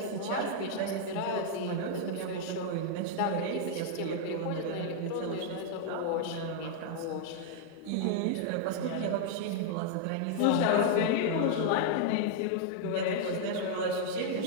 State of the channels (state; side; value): different; both; correlation -0.01